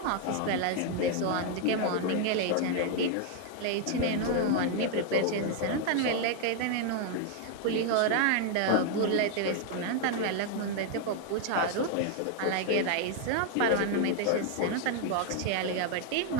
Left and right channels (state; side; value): different; both; correlation 0.00